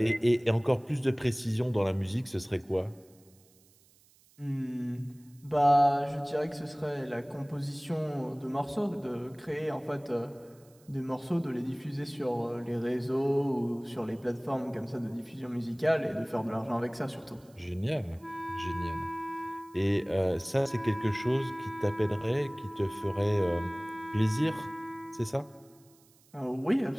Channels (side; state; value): right; noise; hiss, 30 dB below the sound